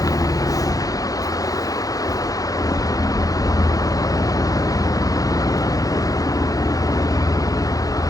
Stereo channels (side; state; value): right; late; 0.17 ms